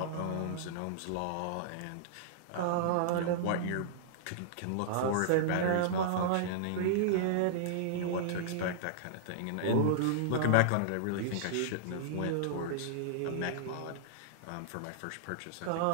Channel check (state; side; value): different; both; correlation -0.02